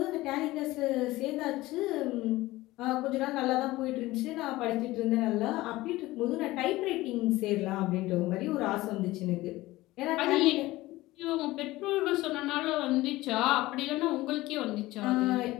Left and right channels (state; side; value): quieter; right; 18.3 dB